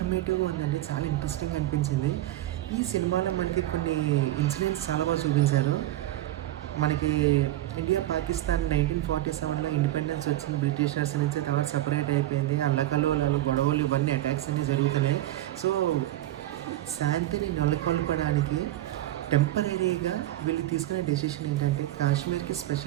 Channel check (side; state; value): left; quieter; 14.8 dB